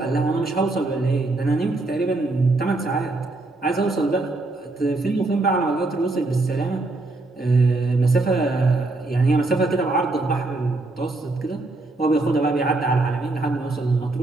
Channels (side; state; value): left; quieter; 3.1 dB